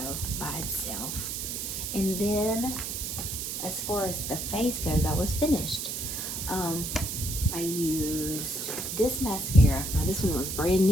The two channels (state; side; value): noise; right; hiss, 4 dB below the sound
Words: by itself. And then as far as the face goes, I was finished. I used this mascara. Now this one was brand